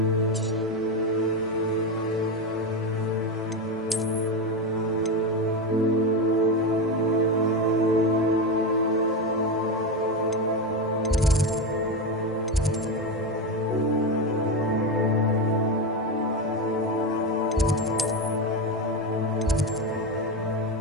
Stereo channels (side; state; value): both; normal; correlation 0.15